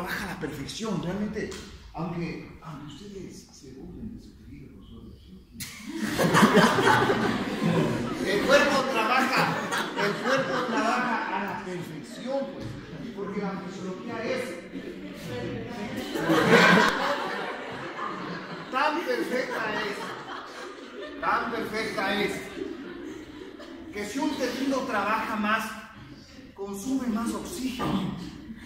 a la perfección, realmente, aunque ustedes se burlen de su tejido, el cuerpo trabaja a la perfección, pues, porque la fisiología es tan perfecta es, que si un tejido trabaja más, consume más oxígeno.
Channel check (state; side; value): identical; both; correlation 1.00